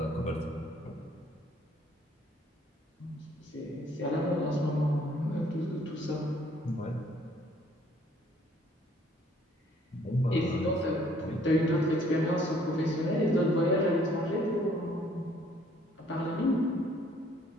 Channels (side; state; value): both; normal; correlation 0.61